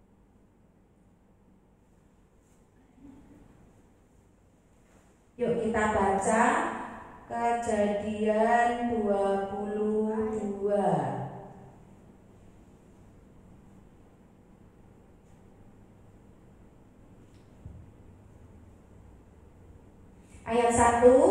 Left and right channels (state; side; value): identical; both; correlation 1.00